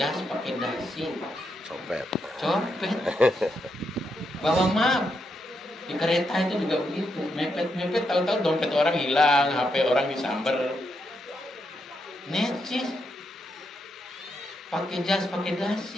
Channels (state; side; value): normal; both; correlation 0.82